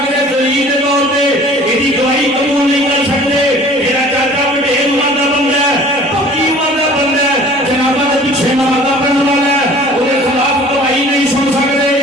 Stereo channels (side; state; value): both; normal; correlation 0.48